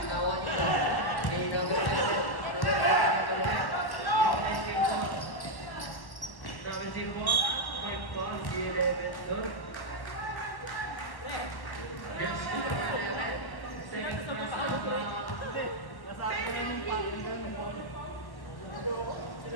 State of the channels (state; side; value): late; right; 1.1 ms